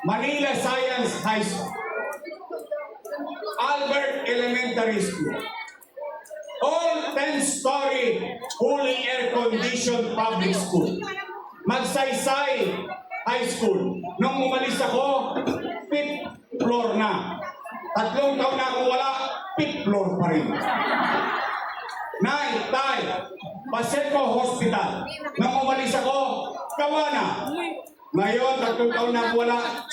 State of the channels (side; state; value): both; identical; correlation 1.00